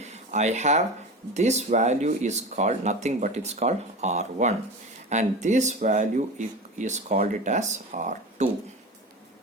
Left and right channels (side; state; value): both; normal; correlation 0.29